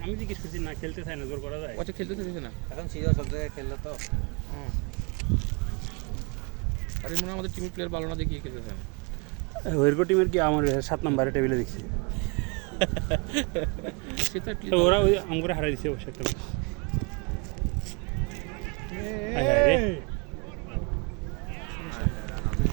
আমি জিজ্ঞেস করছি না, খেলতে চাই না, জোর করা যায়। আচ্ছা খেলতে চাইছে না এখন সিরিয়াস সব জায়গায় খেললে তো। আরে মনে হয় আমাদের টিমের প্লেয়ার ভালো না দেখিয়ে খেলতে চায় না। ওয়েরকো টিমের কি আমার 7 নম্বরে টেবিলে দেখছি, সে তো at least ওরা ওই আমগরে হারাই দিছে অবশ্য একটা ম্যাচ।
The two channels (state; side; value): quieter; left; 31.5 dB